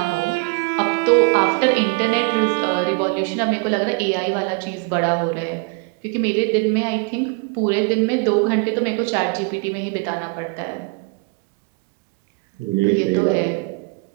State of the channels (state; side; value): quieter; left; 30.4 dB